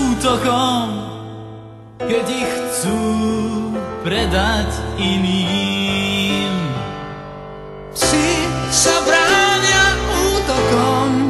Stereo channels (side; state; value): both; identical; correlation 1.00